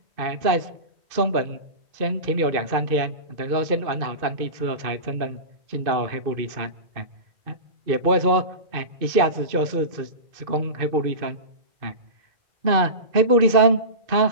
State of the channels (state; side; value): late; left; 2.5 ms